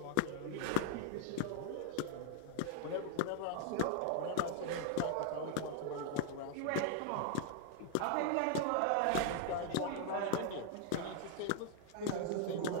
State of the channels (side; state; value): both; different; correlation 0.00